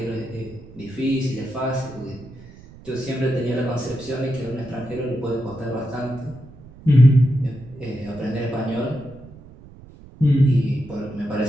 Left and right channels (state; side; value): noise; right; rumble, 20 dB below the sound